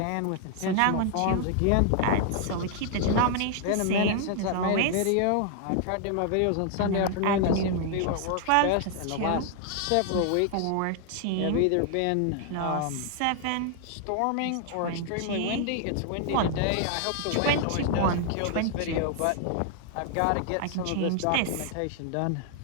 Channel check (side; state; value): both; different; correlation 0.00